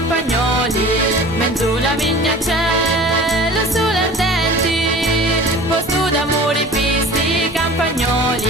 Mezzo la vigna cielo sulle ardenti, posto d'amore pisti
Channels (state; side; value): normal; both; correlation 0.42